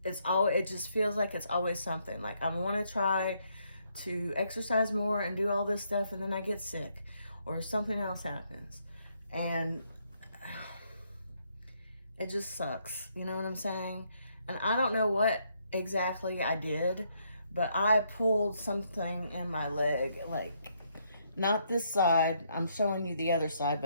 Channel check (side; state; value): both; inverted; correlation -0.74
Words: it just feels like it's always something. Like I want to try to exercise more and do all this stuff, and then I get sick or something else happens, and it just sucks. You know what I'm saying? And I don't know what exactly I did, but I pulled something in my leg, like not this side. I'm showing you the other side,